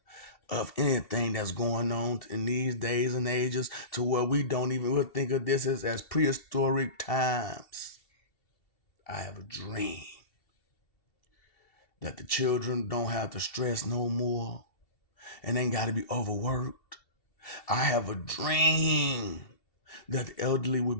of anything that's going on in these days and ages, to where we don't even we'll think of this as prehistoric times. I have a dream that the children don't have to stress no more and ain't got to be overworked. I have a dream that the elderly will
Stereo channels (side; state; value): right; late; 2.7 ms